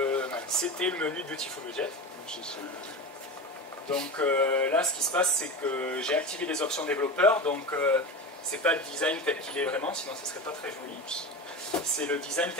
menu de Beautiful Widget. Donc là ce qui se passe c'est que j'ai activé les options développeurs, donc c'est pas le design tel qu'il est vraiment, sinon ça serait pas très joli. C'est le design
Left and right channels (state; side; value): normal; both; correlation 0.25